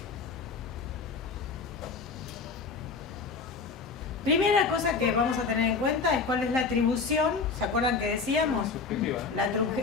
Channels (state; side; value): quieter; right; 4.8 dB